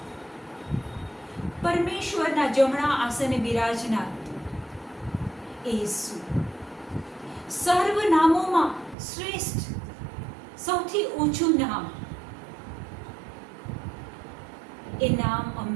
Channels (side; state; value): left; drops out; at 9.0 s